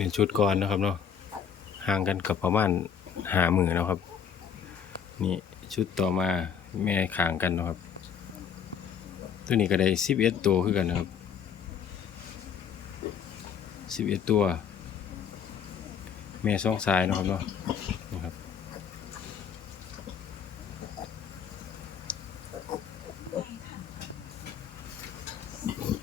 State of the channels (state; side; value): quieter; right; 7.6 dB